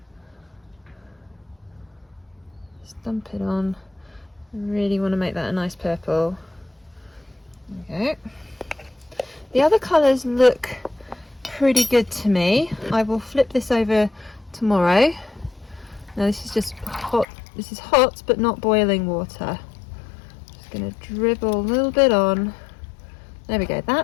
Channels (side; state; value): right; drops out; at 17.2 s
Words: Just dump it on. I really want to make that a nice purple. There we go. The other colours look pretty good to me. I will flip this over tomorrow. Now this is just hot. This is hot but not boiling water. Just going to dribble a little bit on. There we go.